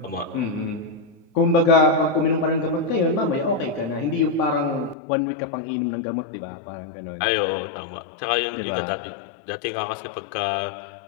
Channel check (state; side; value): drops out; right; at 5.0 s